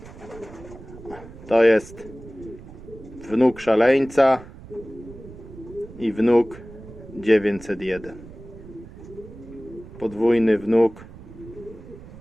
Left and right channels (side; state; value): right; noise; rumble, 17 dB below the sound